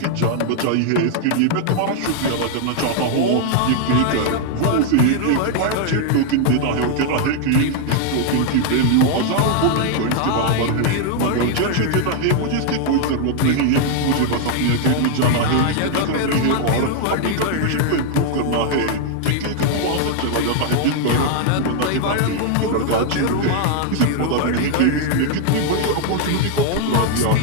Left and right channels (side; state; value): both; different; correlation 0.00